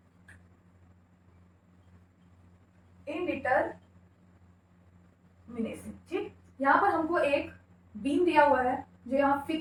indeterminacy, ठीक। यहाँ पर हमको एक बीम दिया हुआ है जो यहाँ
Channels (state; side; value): identical; both; correlation 1.00